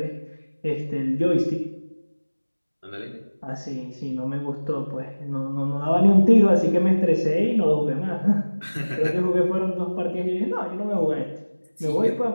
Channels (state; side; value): inverted; both; correlation -1.00